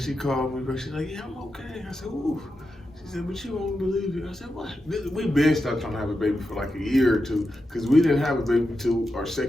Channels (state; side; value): normal; both; correlation 0.88